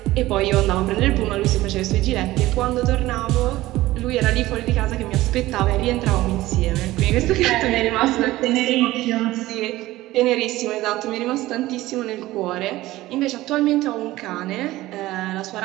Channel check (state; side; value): quieter; left; 17.1 dB